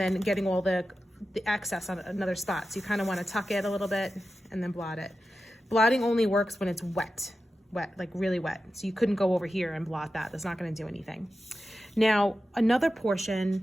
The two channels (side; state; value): both; normal; correlation 0.92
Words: getting all the excess on another spot. So you kind of want to tuck it a little bit and then blot it. Blotting only works when it's wet, like really wet. So you couldn't go over here and blot that. That's not going to do anything. Now, another